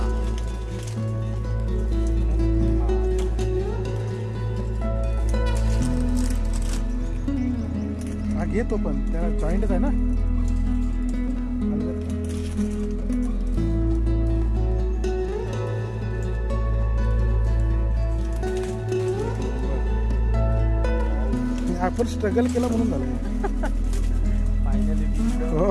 घेतो पण त्याला जॉईंटच आहे ना. आपण स्ट्रगल केला म्हणून झालं.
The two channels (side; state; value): both; identical; correlation 1.00